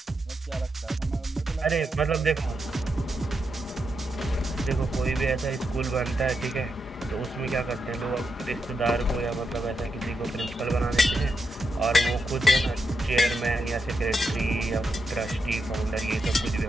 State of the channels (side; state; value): both; normal; correlation 0.84